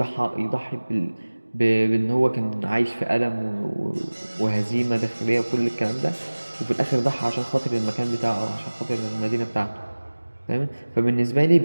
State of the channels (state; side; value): inverted; both; correlation -1.00